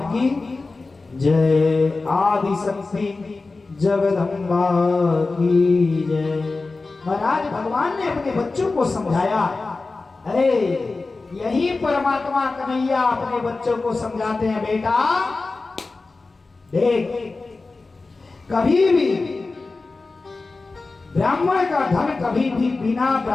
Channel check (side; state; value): right; quieter; 3.7 dB